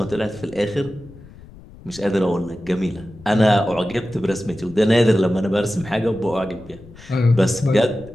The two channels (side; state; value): left; noise; rumble, 20 dB below the sound